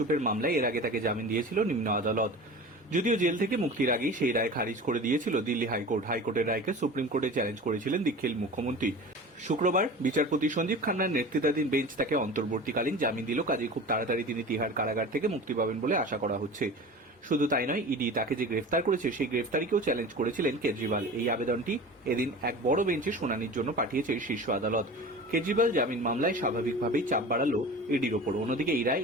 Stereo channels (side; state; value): both; normal; correlation 0.35